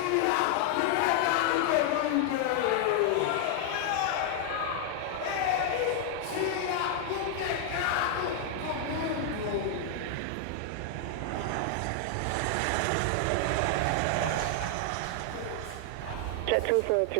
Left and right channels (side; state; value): both; different; correlation 0.00